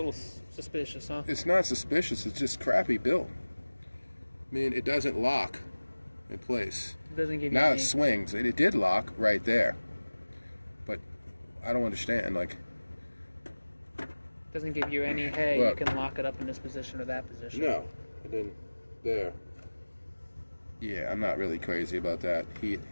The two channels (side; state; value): both; inverted; correlation -1.00